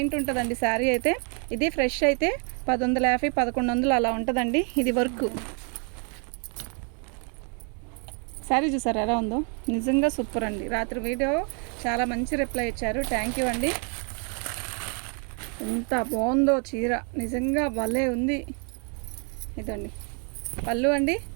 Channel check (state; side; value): quieter; left; 38.7 dB